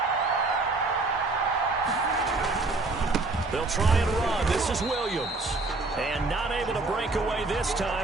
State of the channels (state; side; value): quieter; left; 3.4 dB